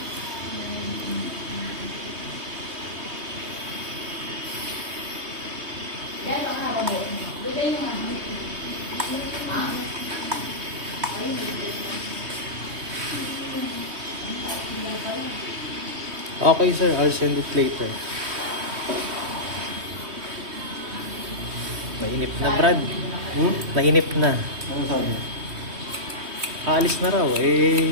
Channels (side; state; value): left; late; 3.2 ms